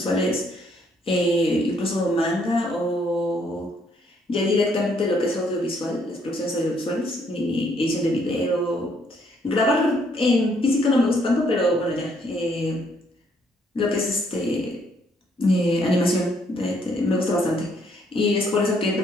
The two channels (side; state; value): both; normal; correlation 0.69